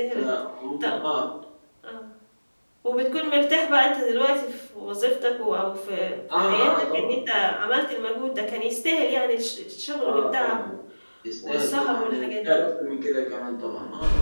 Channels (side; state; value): both; inverted; correlation -1.00